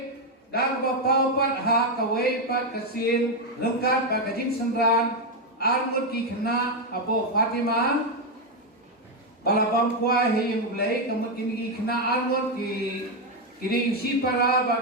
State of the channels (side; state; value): both; normal; correlation 0.04